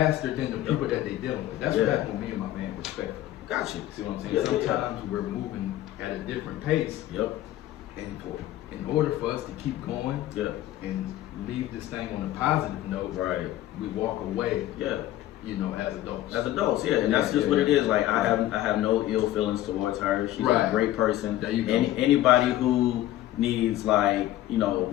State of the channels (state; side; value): quieter; right; 14.2 dB